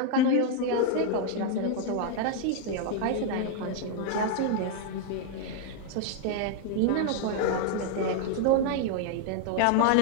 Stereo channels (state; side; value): different; both; correlation 0.00